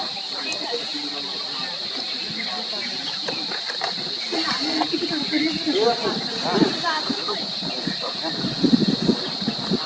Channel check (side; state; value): both; identical; correlation 1.00